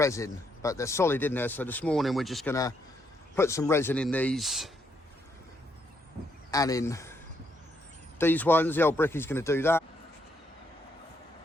but they're solid in there. So this morning we're just gonna put some resin in these and in these ones. The old Brickie's gonna do that.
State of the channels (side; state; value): both; normal; correlation 0.75